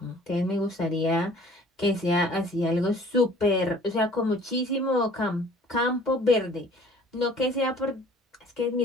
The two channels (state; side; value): normal; both; correlation 0.52